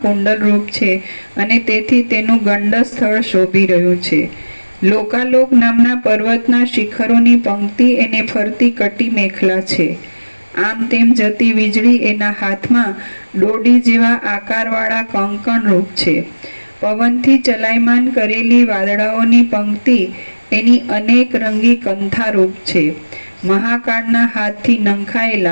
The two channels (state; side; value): inverted; both; correlation -1.00